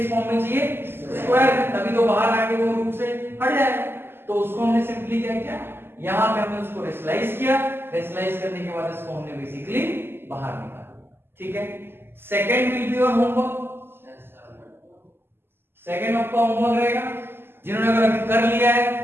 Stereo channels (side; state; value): left; late; 0.11 ms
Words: फॉर्म में चाहिए, स्क्वायर में, तभी तो बाहर आके वो रूट से हट जाएगा। तो उसको हमने सिंपली क्या किया, यहां पे हमने उसको रेशनलाइज किया, रेशनलाइज करने के बाद इसको हमने बेसिकली बाहर निकाला, ठीक है। Second will be your homework, second आपका होमवर्क रहेगा। जिन्होंने अगर अभी कर लिया